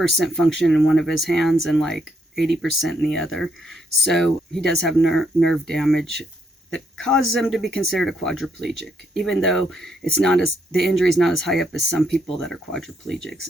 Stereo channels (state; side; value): normal; both; correlation 0.75